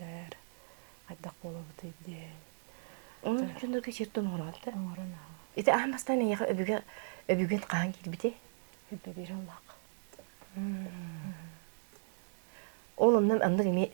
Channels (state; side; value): silent; left; digital silence